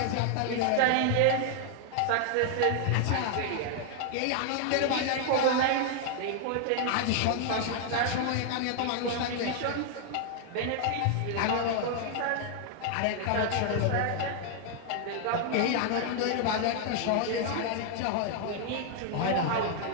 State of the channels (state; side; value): different; both; correlation 0.00